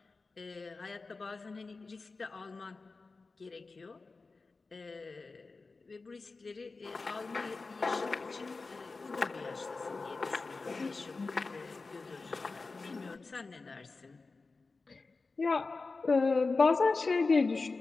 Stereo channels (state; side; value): quieter; right; 3.9 dB